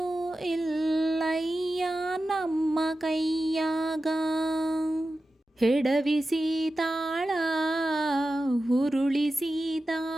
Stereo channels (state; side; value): normal; both; correlation 0.93